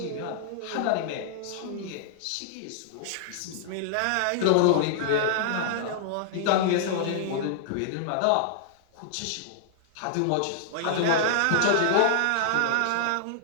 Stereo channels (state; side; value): different; both; correlation -0.01